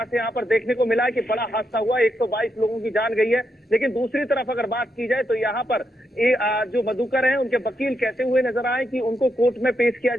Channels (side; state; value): both; normal; correlation 0.82